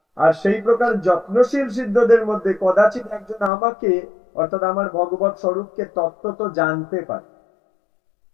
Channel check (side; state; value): right; drops out; at 3.5 s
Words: আর সেই প্রকার যত্নশীল সিদ্ধদের মধ্যে কদাচিৎ একজন আমাকে, অর্থাৎ আমার ভগবত স্বরূপকে তত্ত্ব তো জানতে পারে।